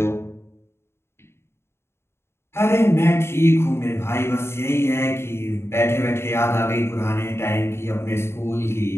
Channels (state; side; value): late; right; 0.12 ms